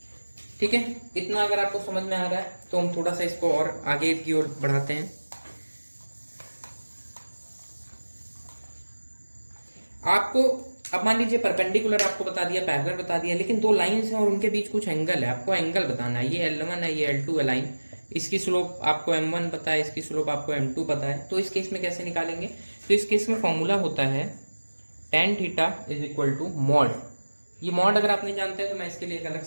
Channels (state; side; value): inverted; both; correlation -1.00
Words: ठीक है, इतना अगर आपको समझ में आ रहा है तो हम थोड़ा सा इसको और आगे की ओर बढ़ाते हैं। आपको अब मान लीजिए परपेंडिकुलर आपको बता दिया, पैरेलल बता दिया, लेकिन दो लाइंस हैं और उनके बीच कुछ एंगल है, आपको एंगल बताना है। ये L1 है, ये L2 है लाइन, इसकी स्लोप आपको M1 पता है, इसकी स्लोप आपको M2 पता है। तो इस केस में कैसे निकालेंगे? तो इस केस में फॉर्मूला होता है tan theta is equal to mod. ये मॉड अगर आप नहीं जानते हैं तो मैं इसके लिए एक अलग